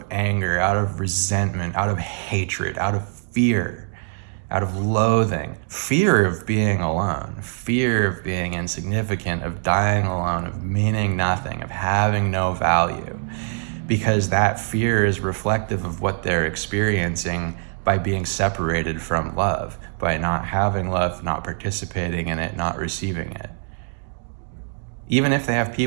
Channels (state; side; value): silent; left; digital silence